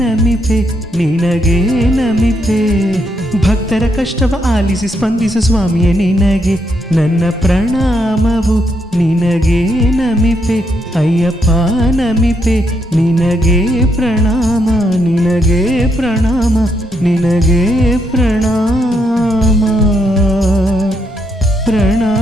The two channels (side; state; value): both; normal; correlation 0.77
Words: ನಮಿಪೆ ನಿನಗೆ ನಮಿಪೆ. ಭಕ್ತರ ಕಷ್ಟವ ಆಲಿಸಿ ಸ್ಪಂದಿಸು ಸ್ವಾಮಿಯೇ ನಿನಗೆ ನನ್ನ ಪ್ರಣಾಮವು. ನಿನಗೆ ನಮಿಪೆ ಅಯ್ಯಪ್ಪ, ನಮಿಪೆ ನಿನಗೆ ಪ್ರಣಾಮ, ನಿನಗೆ ಪ್ರಣಾಮ, ನಿನಗೆ ಪ್ರಣಾಮ